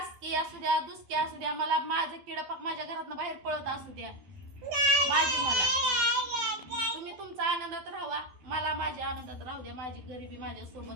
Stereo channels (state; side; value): late; left; 12 ms